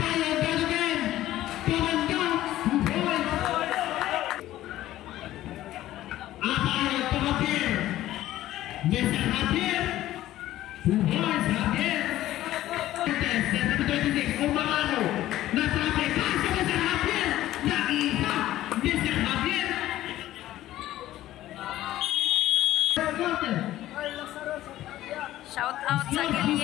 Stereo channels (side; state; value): right; quieter; 14.4 dB